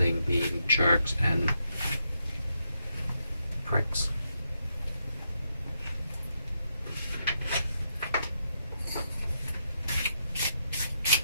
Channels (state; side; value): inverted; both; correlation -0.81